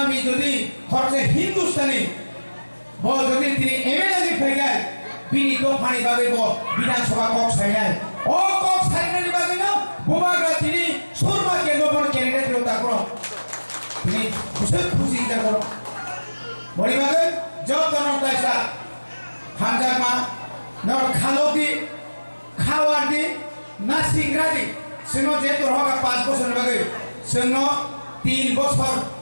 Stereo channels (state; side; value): inverted; both; correlation -1.00